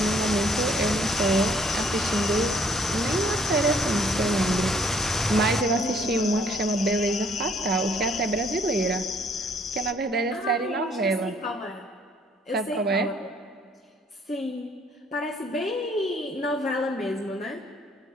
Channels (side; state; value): both; normal; correlation 0.62